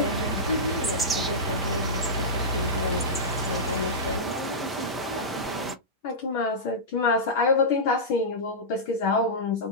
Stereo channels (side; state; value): both; normal; correlation -0.12